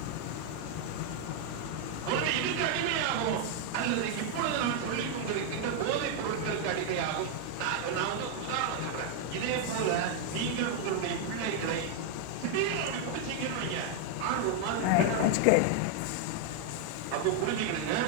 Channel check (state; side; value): different; both; correlation 0.00